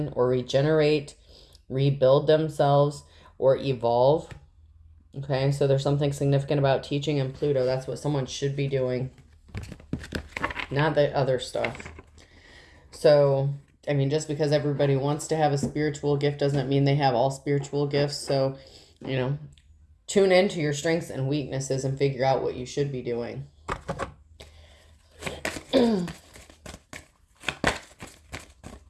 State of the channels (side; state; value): both; identical; correlation 1.00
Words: or regenerate, rebuild themselves, or evolve. Okay, so there's something significant about teaching in Pluto. That's what someone should be doing, not the other stuff. So, I mean, just because everybody wants to have a spiritual gift doesn't mean they have all spiritual gifts. So, you know, tune into your strengths and weaknesses and figure out what you should be doing.